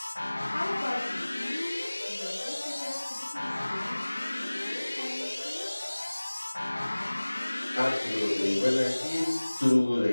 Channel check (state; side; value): inverted; both; correlation -1.00